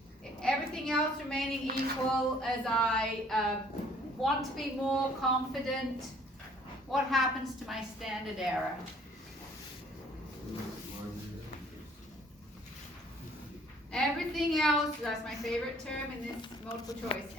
everything else remaining equal as I want to be more confident, what happens to my standard error? Everything else, that's my favorite term in this multiple choice,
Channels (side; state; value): both; normal; correlation 0.58